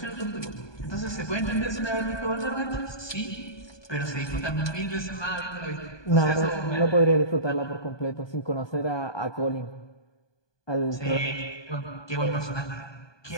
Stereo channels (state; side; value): late; right; 1.2 ms